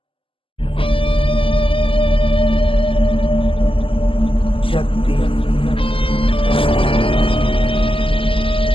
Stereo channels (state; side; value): late; right; 0.26 ms